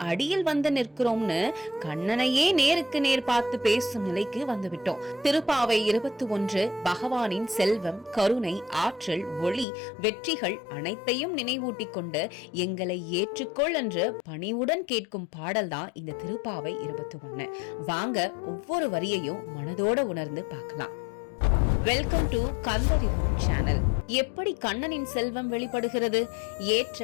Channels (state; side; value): drops out; right; at 9.7 s